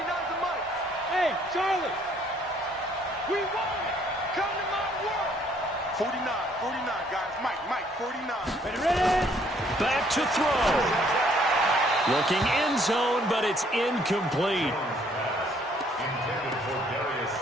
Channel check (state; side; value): normal; both; correlation 0.64